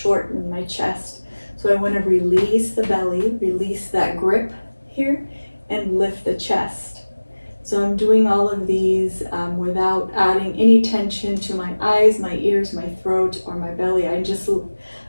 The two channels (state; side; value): inverted; both; correlation -1.00